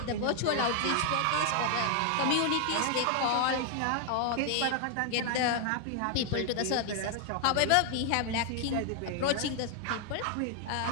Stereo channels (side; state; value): both; different; correlation 0.00